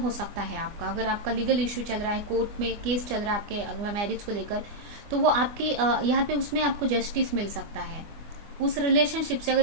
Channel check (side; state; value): left; late; 25 ms